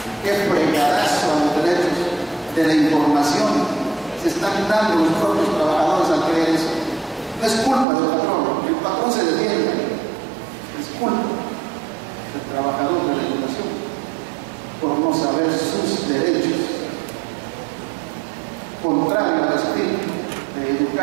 ¿Qué fregadazo a los derechos de la información se están dando los propios trabajadores al creer eso? No es culpa del patrón, el patrón se defiende, es culpa del trabajador de la educación por no saber sus derechos, contrario al espíritu de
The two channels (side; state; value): left; drops out; at 7.9 s